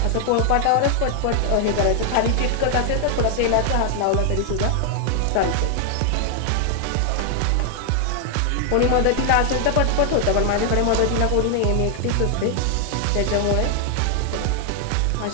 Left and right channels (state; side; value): different; both; correlation 0.00